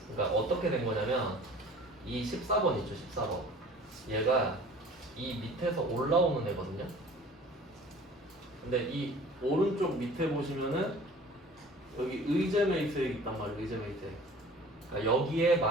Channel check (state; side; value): normal; both; correlation 0.46